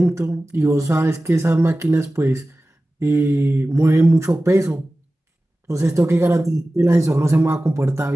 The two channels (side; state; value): both; normal; correlation 0.96